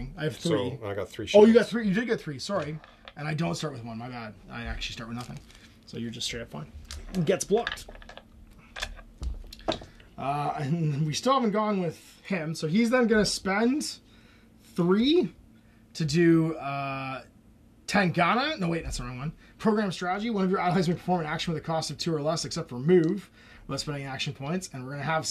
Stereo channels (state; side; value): identical; both; correlation 1.00